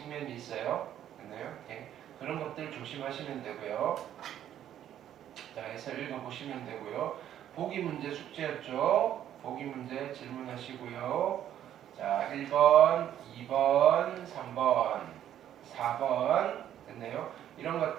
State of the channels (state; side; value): quieter; left; 10.9 dB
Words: 있어요. 됐나요? 네. 그런 것들 조심하시면 되고요. 자, 해서 읽어보시면 되고요. 보기 문제 숙제였죠. 보기 문제 질문하시고요. 자, 1번, 2번, 3번, 4번 됐나요? 이런